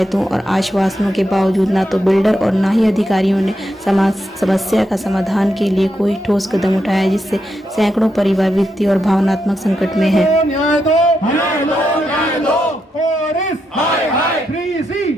और आश्वासनों के बावजूद न तो बिल्डर और न ही अधिकारियों ने समस्या का समाधान के लिए कोई ठोस कदम उठाया, जिससे सैकड़ों परिवार वित्तीय और भावनात्मक संकट में है। न्याय दो, न्याय दो, न्याय दो। ऑरिस, हाय हाय। 3C,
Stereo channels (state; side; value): normal; both; correlation 0.83